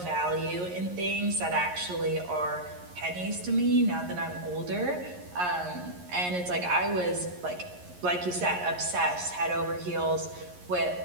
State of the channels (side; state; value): left; late; 11 ms